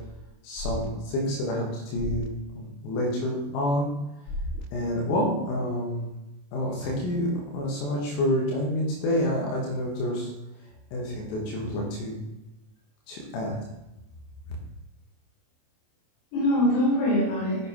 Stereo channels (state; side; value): late; right; 28 ms